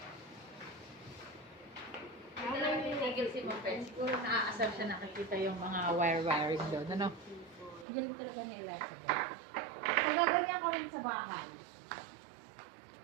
Ano lang yung tigil si Moped? Siguro naaasar siya nakikita yung mga wire-wiring doon. Ano? Galing talaga ni Elizabeth. Pagaganyan ko rin sa bahay.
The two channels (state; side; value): drops out; left; at 7.9 s